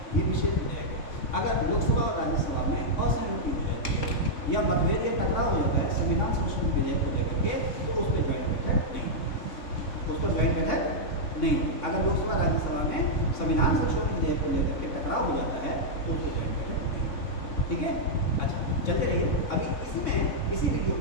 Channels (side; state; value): right; late; 3.6 ms